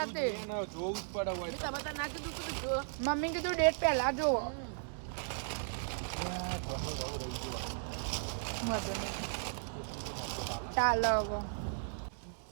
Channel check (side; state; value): left; silent; digital silence